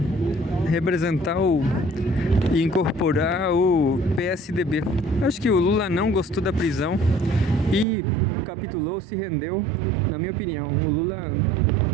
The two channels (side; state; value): left; drops out; at 7.9 s